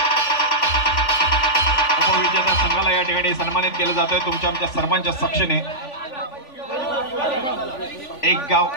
संघाला या ठिकाणी सन्मानित केलं जातंय तुमच्या आमच्या सर्वांच्या साक्षीने. एक गाव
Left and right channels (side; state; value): right; late; 3.5 ms